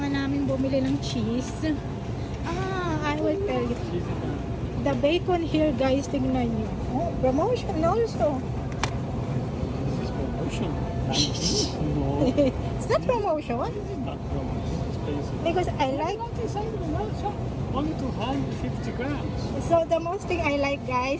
namin bumili ng cheese. I will tell you. The bacon here, guys, tingnan nyo. Oh, promotion also. This is promotion. No. It's not promotion. Not promotion. Because I like only 250 grams. So the most thing I like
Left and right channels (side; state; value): both; identical; correlation 1.00